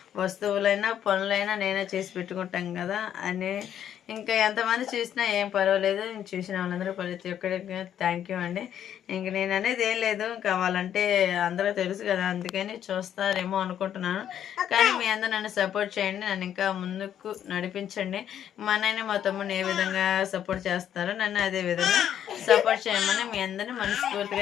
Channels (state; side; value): quieter; right; 10.0 dB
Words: వస్తువులైనా పనులైనా నేనే చేసి పెట్టుకుంటాం కదా అని. ఇంకా ఎంతమంది చూసినా ఏం పర్వాలేదు. చూసిన వాళ్ళందరూ ప్రతి ఒక్కరికి థ్యాంక్ యూ అండి. ఇంక నేను అనేది ఏం లేదు, కావాలంటే అందరూ తెలుసు కదా, అందుకని చూస్తారేమో అనుకుంటున్నాను. కానీ మీ అందరూ నన్ను సపోర్ట్ చేయండి, నన్ను ఇంకా ముందుకు నడిపించండి. మా నాయన మా తమ్ముడిని ఏ విధంగా సపోర్ట్ చేస్తారో నన్ను అదే విధంగా సపోర్ట్ చేయమని మీ అందరినీ